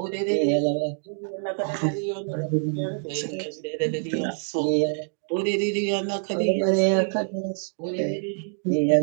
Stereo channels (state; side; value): silent; left; digital silence